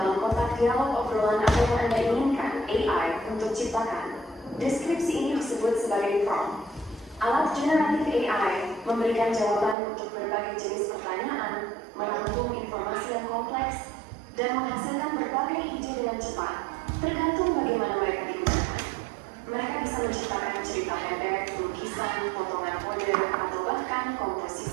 kotak dialog obrolan apa yang Anda inginkan AI untuk ciptakan. Deskripsi ini disebut sebagai prompt. Alat generatif AI memberikan jawaban untuk berbagai jenis pertanyaan, merangkum informasi yang kompleks, dan menghasilkan berbagai ide dengan cepat, tergantung bagaimana mereka digunakan. Mereka bisa menciptakan cerita pendek, lukisan, potongan kode, atau bahkan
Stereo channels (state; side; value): drops out; left; at 9.8 s